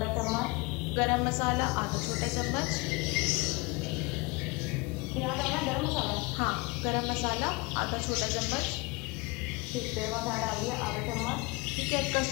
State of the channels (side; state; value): right; quieter; 25.8 dB